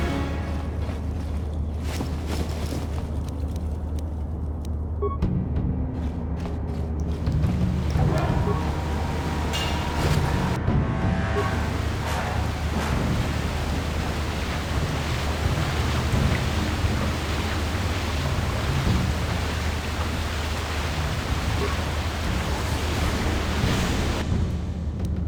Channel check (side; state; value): both; identical; correlation 1.00